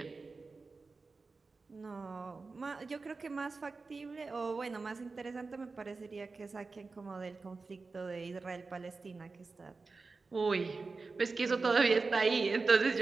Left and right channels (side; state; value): left; quieter; 4.1 dB